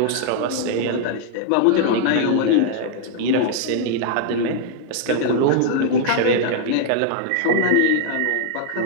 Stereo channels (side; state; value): both; different; correlation -0.01